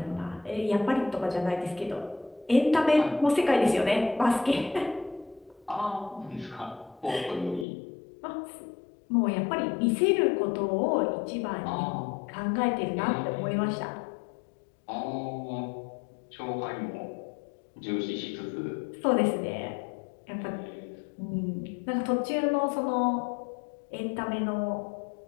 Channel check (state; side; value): drops out; right; at 7.7 s